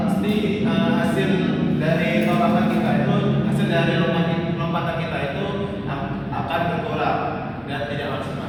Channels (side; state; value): both; identical; correlation 1.00